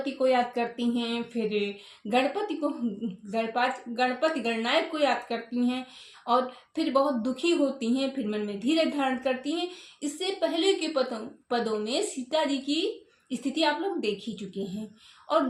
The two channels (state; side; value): identical; both; correlation 1.00